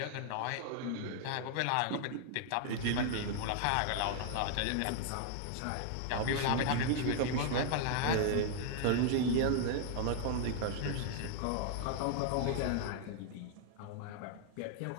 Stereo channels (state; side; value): different; both; correlation 0.00